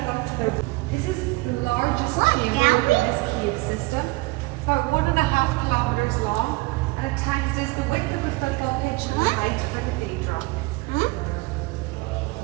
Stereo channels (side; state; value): left; quieter; 23.7 dB